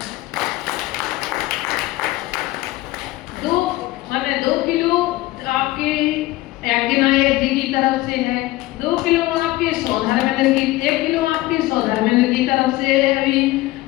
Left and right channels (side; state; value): right; quieter; 18.3 dB